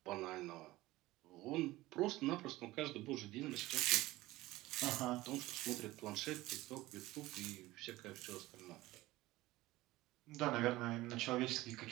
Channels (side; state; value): left; quieter; 18.2 dB